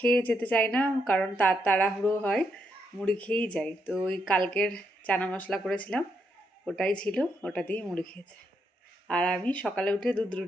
যেতে চাই না, কারণ তাড়াহুড়ো হয়, মুড়ি খেয়েই যাই। তো ওই কালকের চানা মশলা করেছিলাম, ওটাই ছিল, ওটা দিয়েই মুড়ি খেয়েছে। আর আমি সকালে উঠে দুধ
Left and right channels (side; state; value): both; normal; correlation 0.78